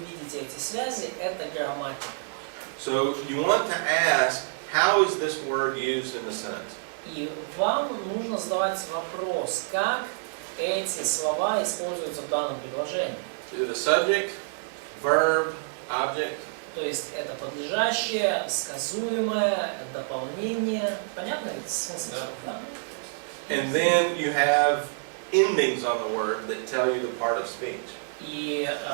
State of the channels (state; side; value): silent; left; digital silence